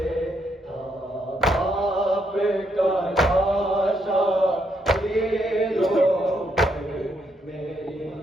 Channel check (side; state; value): both; normal; correlation 0.76